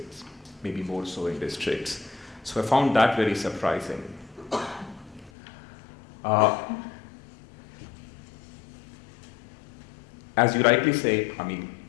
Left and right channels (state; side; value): drops out; right; at 5.3 s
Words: maybe more so in districts. So I found that very surprising. As you rightly say, I mean,